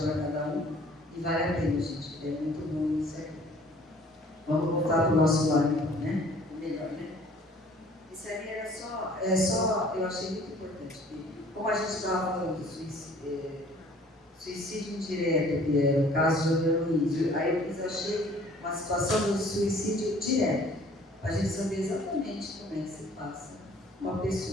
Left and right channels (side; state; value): both; normal; correlation 0.54